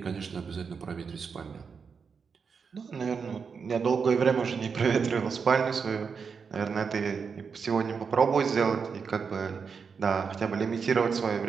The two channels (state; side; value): quieter; left; 5.8 dB